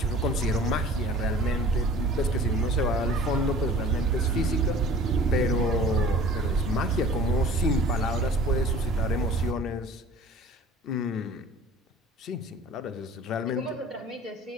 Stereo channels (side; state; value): both; normal; correlation 0.46